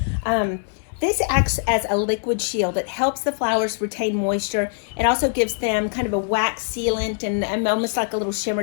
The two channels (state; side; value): silent; right; 62 dB below the other